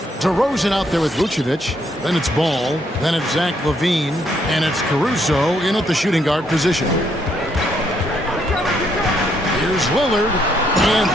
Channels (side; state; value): both; normal; correlation 0.72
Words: DeRozan out there with Vucevic. Then it's Ball. Then it's Zach LaVine. And it's Caruso in at the shooting guard position. Here's Lillard. And